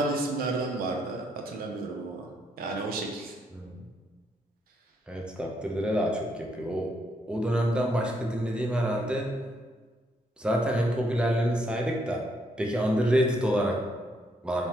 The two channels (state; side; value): normal; both; correlation 0.74